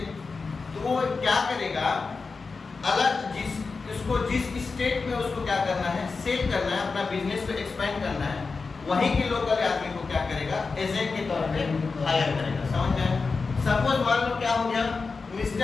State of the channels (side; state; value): right; quieter; 4.4 dB